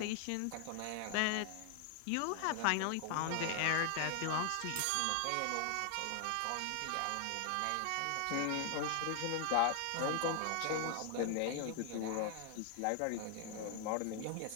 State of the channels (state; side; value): different; both; correlation 0.00